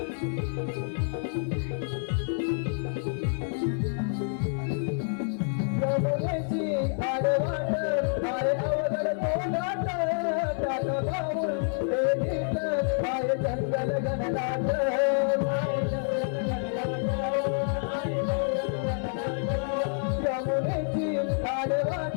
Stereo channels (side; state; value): right; silent; 59 dB below the other